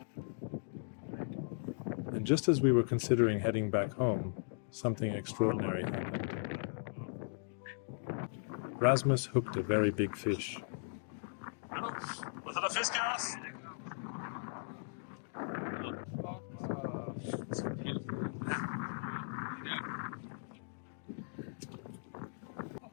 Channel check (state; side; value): silent; right; digital silence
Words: And just as we were considering heading back home, something extraordinary happened. Rasmus hooked a very big fish. Og så er der fisk her også.